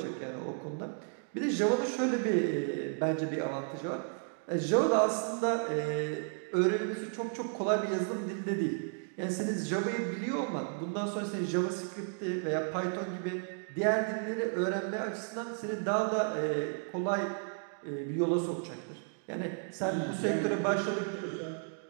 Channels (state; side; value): silent; left; 56 dB below the other